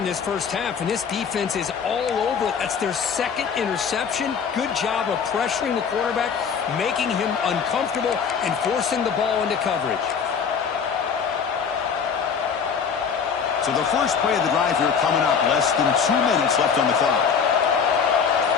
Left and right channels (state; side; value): quieter; right; 6.5 dB